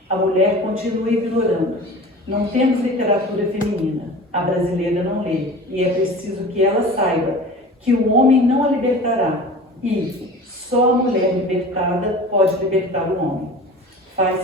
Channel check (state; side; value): normal; both; correlation 0.38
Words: A mulher continua ignorando. Não temos literatura feminina. A brasileira não lê. E é preciso que ela saiba que o homem não a libertará e só a mulher libertada pode libertar o homem.